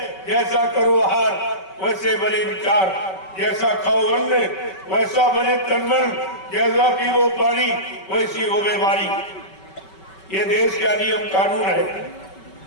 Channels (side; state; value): right; late; 5.3 ms